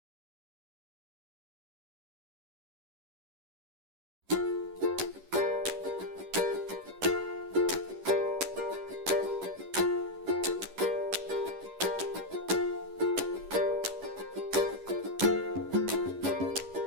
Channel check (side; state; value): left; late; 11 ms